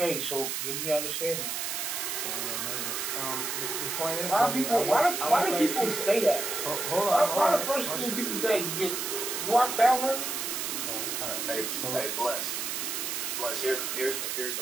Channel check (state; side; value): noise; right; hiss, 2 dB below the sound